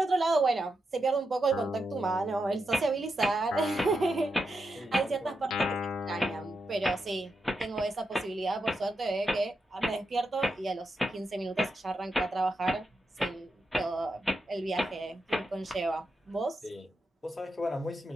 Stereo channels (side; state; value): both; normal; correlation 0.86